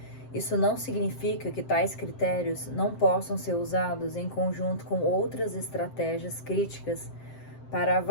isso não significa que tais critérios não possam ser usados em conjunto com outras estratégias críticas para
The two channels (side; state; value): right; late; 7.7 ms